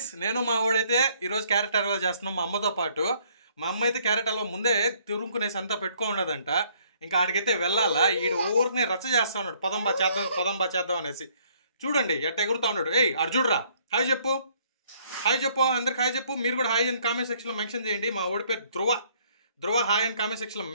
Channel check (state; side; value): inverted; both; correlation -0.64